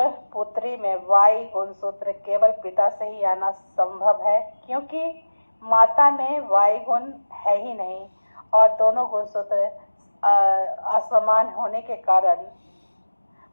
पुत्री में Y गुणसूत्र केवल पिता से ही आना संभव है क्योंकि माता में Y गुण है ही नहीं और दोनों गुणसूत्र असमान होने के कारण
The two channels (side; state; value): both; inverted; correlation -1.00